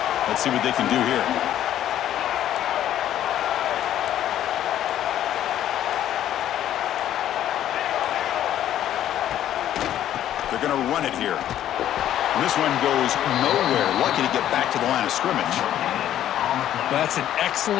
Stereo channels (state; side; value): quieter; right; 11.6 dB